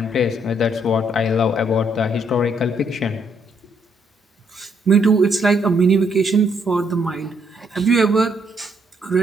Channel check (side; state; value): both; normal; correlation 0.72